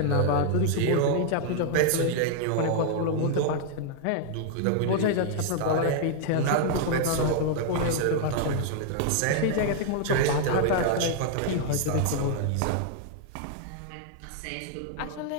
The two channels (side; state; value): both; different; correlation 0.00